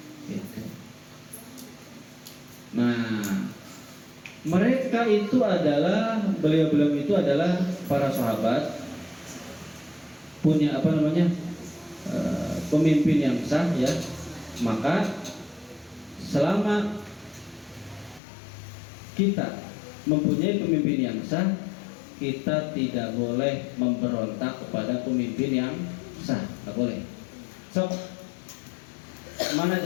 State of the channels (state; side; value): drops out; right; at 18.2 s